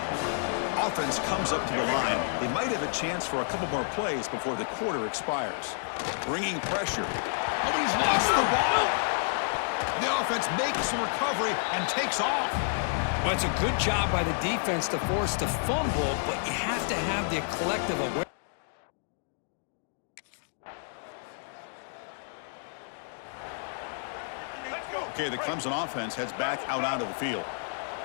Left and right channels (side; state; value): right; silent; digital silence